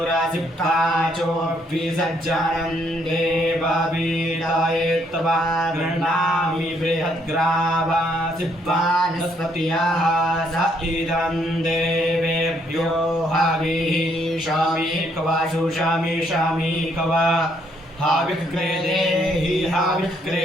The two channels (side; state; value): both; normal; correlation 0.70